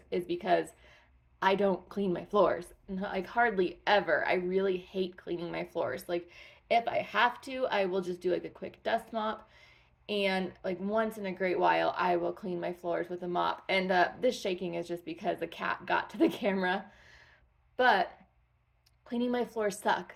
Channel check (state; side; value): identical; both; correlation 1.00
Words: is because I don't clean my floors. Like hardly ever. I really hate cleaning my floors. Like if I have to, I will just do like a quick dust mop. And like once in a great while, I will clean my floors with a mop. And this shaking is just because the cat got to the camera. But cleaning my floors